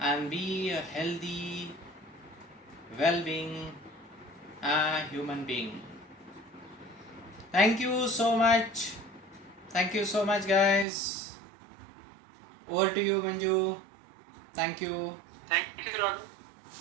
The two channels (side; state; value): left; drops out; at 10.9 s